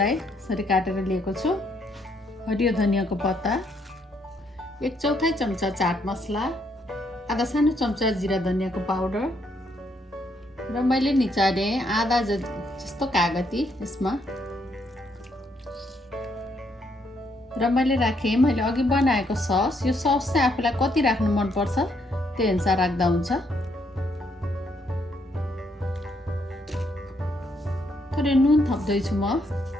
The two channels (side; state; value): both; normal; correlation 0.73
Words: यसरी काटेर लिएको छु। हरियो धनियाँको पत्ता, 1/4 चम्चा चाट मसला, आधा सानो चम्चा जिरा धनियाँको पाउडर, र मैले निचारे आधा जस्तो कागती यसमा। र मैले राखेँ मैले अघि बनाएको सस। यो सस चाहिँ आफूलाई कति राख्नु मनपर्छ त्यही अनुसार राख्दा हुन्छ। थोरै नुन थप्दैछु म